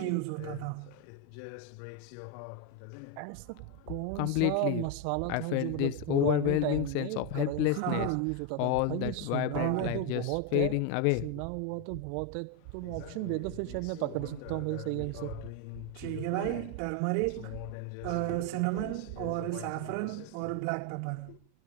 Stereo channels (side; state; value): both; different; correlation 0.02